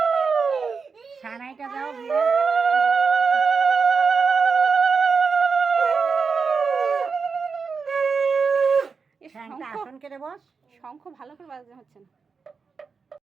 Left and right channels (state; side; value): quieter; left; 5.2 dB